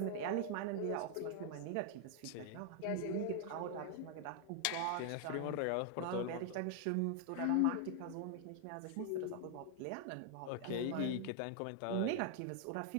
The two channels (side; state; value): both; different; correlation 0.00